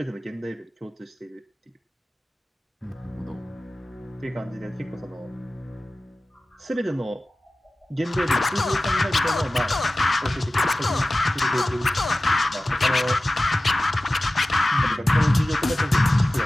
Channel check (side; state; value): both; normal; correlation 0.96